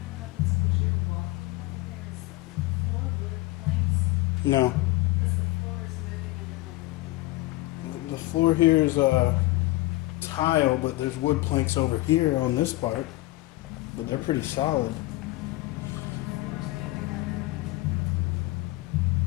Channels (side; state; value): right; quieter; 19.3 dB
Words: No. Because the floor is moving under my. The floor here is tile, but there's wood planks over here on this part. But they're pretty solid.